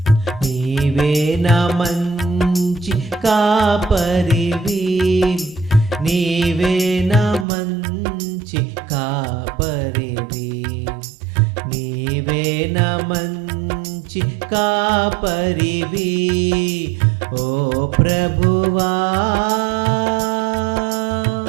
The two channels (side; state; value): left; drops out; at 7.5 s